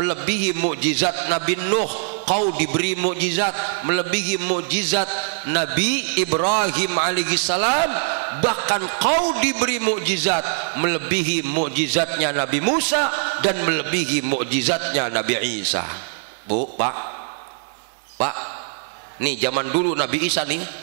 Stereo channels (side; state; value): left; silent; 63 dB below the other